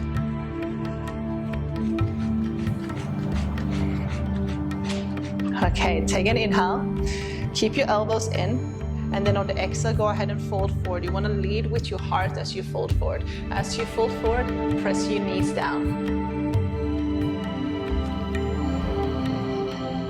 Okay, take an inhale, keep your elbows in, and then on the exhale, go ahead and fold forward. You want to lead with your heart as you fold forward. As you fold forward, press your knees down.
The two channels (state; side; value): identical; both; correlation 1.00